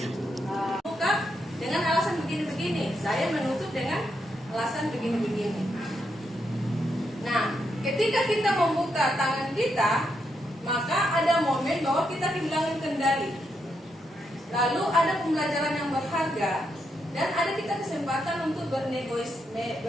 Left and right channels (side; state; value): both; normal; correlation 0.81